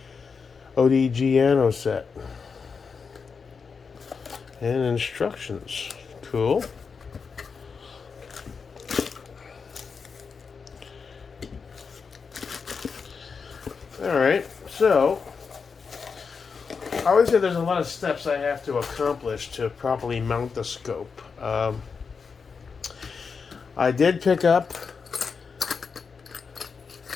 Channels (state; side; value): quieter; right; 5.4 dB